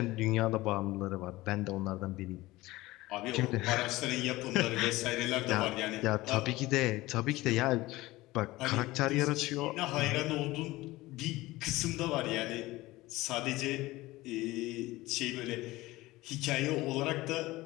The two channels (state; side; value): quieter; right; 19.0 dB